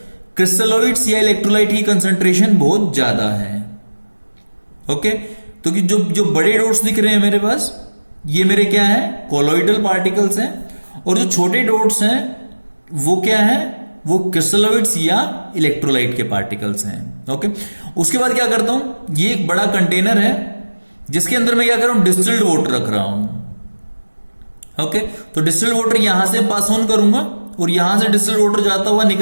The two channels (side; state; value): both; inverted; correlation -1.00